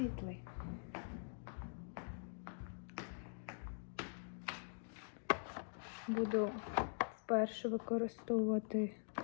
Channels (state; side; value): silent; right; digital silence